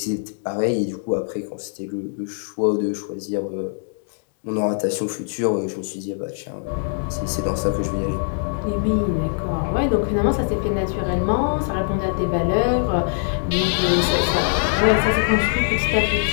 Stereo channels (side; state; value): right; silent; 61 dB below the other